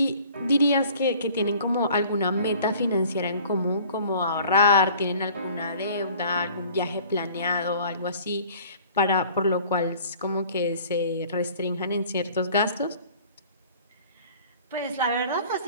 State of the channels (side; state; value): both; inverted; correlation -0.50